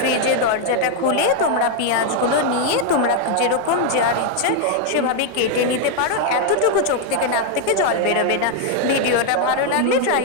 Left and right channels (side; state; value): both; different; correlation 0.00